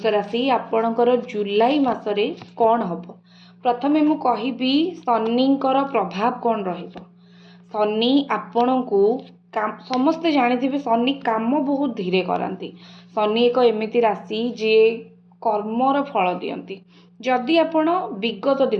राशि आपणकर जुलाई मासरे कौन हबो प्रथमे मु कहिबी शनिकर प्रभाव कौन रहिबो। शनि आपणको समस्ते जानिथिबे शनि काम बहुत धीरे करंती। शनि एक एमिति राशि जे कर्मर फल दियंती। जदि आपण विगत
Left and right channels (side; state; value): both; identical; correlation 1.00